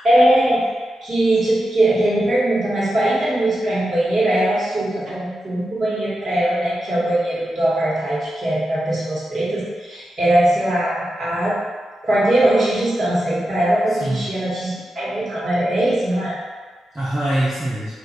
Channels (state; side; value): normal; both; correlation 0.90